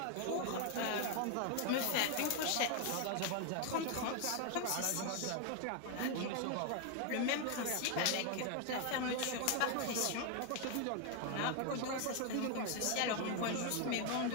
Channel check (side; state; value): both; different; correlation 0.01